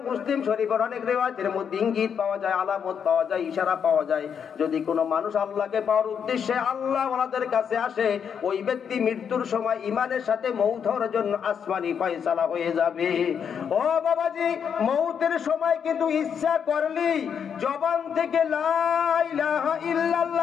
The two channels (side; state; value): right; quieter; 7.5 dB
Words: মুসলিম শরীফের অনেক রিওয়ায়াতের মধ্যে ইঙ্গিত পাওয়া যায়, আলামত পাওয়া যায়, ইশারা পাওয়া যায়। যদি কোনো মানুষ আল্লাহকে পাওয়ার উদ্দেশ্যে আল্লাহ ওয়ালাদের কাছে আসে, ওই ব্যক্তি মৃত্যুর সময় ঈমানের সাথে মওত হওয়ার জন্য আসমানি ফয়সালা হয়ে যাবে। ও বাবাজি, মওতের সময় কিন্তু ইচ্ছা করলেই জবান থেকে লা ইলাহা